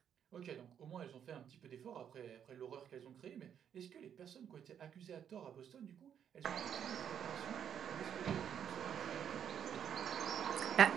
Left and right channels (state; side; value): quieter; left; 8.7 dB